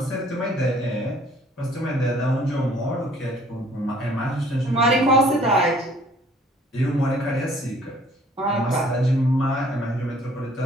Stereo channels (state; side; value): normal; both; correlation 0.57